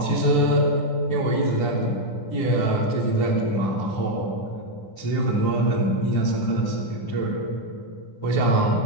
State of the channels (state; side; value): late; right; 9.6 ms